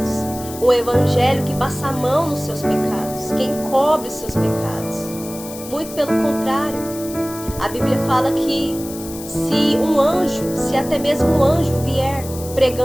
Um evangelho que passa a mão nos seus pecados. Que encobre os seus pecados. Muito pelo contrário. A Bíblia fala que se até mesmo um anjo vier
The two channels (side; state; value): left; noise; hiss, 14 dB below the sound